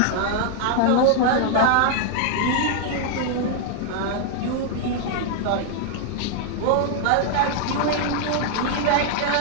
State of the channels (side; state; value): both; different; correlation 0.00